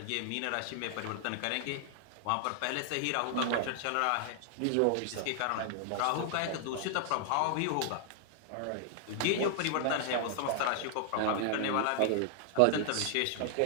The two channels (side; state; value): both; different; correlation 0.00